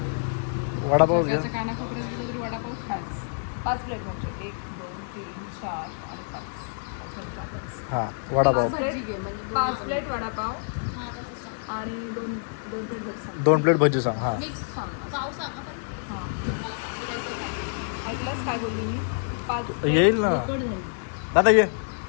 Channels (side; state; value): right; silent; digital silence